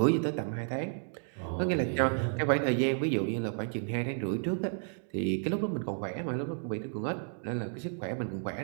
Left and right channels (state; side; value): silent; left; 56 dB below the other